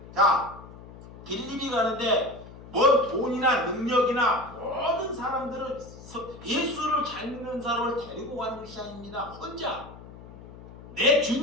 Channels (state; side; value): noise; left; hum, 17 dB below the sound